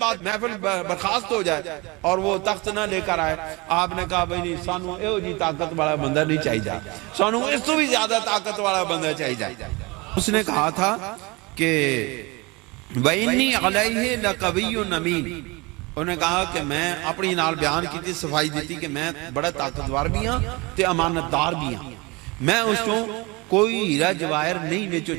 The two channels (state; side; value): quieter; left; 25.4 dB